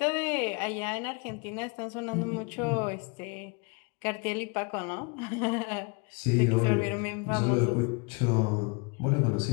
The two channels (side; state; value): right; quieter; 32.0 dB